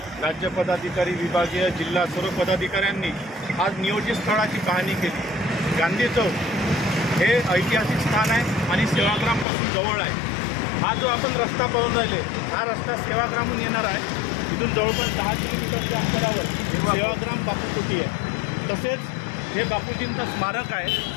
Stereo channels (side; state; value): right; drops out; at 9.5 s